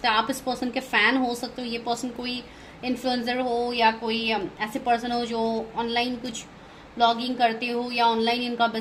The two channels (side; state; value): both; identical; correlation 1.00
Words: है। आप इस पर्सन के फ़ैन हो सकते हो, ये पर्सन कोई इन्फ्लुएंसर हो, या कोई ऐसे पर्सन हो जो ऑनलाइन कुछ ब्लॉगिंग करते हो, या ऑनलाइन इनका